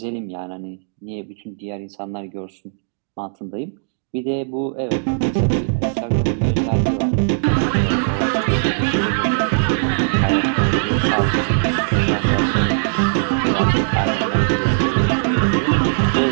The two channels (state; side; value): silent; left; digital silence